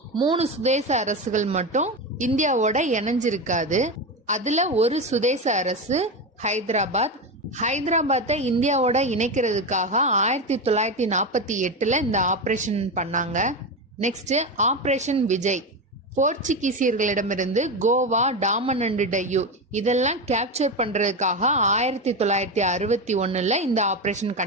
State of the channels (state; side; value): normal; both; correlation 0.17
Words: 3 சுதேச அரசுகள் மட்டும் இந்தியாவோட இணைஞ்சிருக்காது. அதுல ஒரு சுதேச அரசு ஹைதராபாத்தை இந்தியாவோட இணைக்கிறதுக்காக 1948 இந்த ஆபரேஷன் பண்ணாங்க. நெக்ஸ்ட் ஆபரேஷன் விஜய் போர்ச்சுகீசியர்களிடமிருந்து கோவா, டாமன் அண்ட் டையூ இதெல்லாம் கேப்சர் பண்றதுக்காக 1961 இந்த ஆபரேஷன்